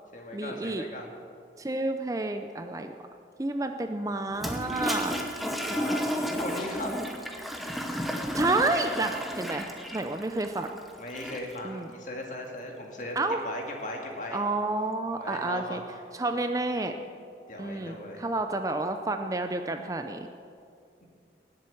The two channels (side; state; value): both; normal; correlation 0.45